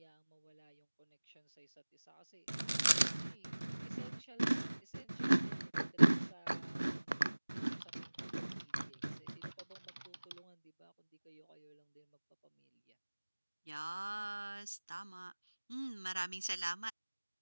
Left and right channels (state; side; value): inverted; both; correlation -1.00